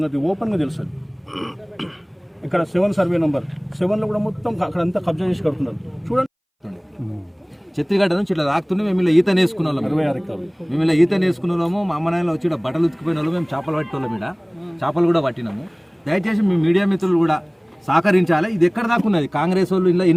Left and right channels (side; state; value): both; identical; correlation 1.00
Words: ఓపెన్గా తెలుస్తుంది. ఇక్కడ 7 సర్వే నెంబర్ 7లో కూడా మొత్తం అక్కడంతా కబ్జా చేసి కడుతున్నారు. చూడండి, చెత్తిగడ్డ నుంచి ఇట్లా రాకుతుండే మేము ఇలా ఈత నేసుకున్న వాళ్ళం. 26 ఎకరాలు మేము ఇలా ఈత నేసుకున్న వాళ్ళము. మా అమ్మ నాయనలు వచ్చి బట్టలు ఉతికిపోయిన వాళ్ళు, మేము చేపలు పట్టేవాళ్ళం. ఇక్కడ చేపలు కూడా పట్టినాము. దయచేసి మీ మీడియా మిత్రులు కూడా సహకరించాలి. ఇది ఎక్కడ దాకా ఉన్నది, కాంగ్రెస్ వాళ్ళు ఇలా